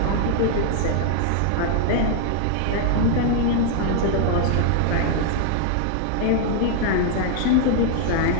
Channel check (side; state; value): both; different; correlation 0.00